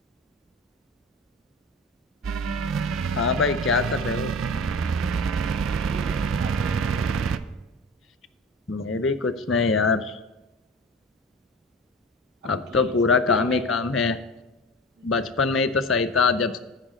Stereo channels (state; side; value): normal; both; correlation 0.33